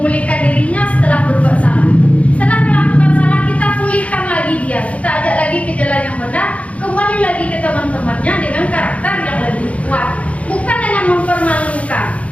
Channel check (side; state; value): right; late; 0.065 ms